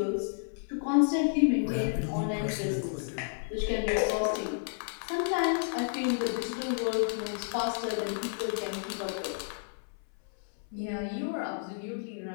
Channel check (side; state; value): right; silent; 57 dB below the other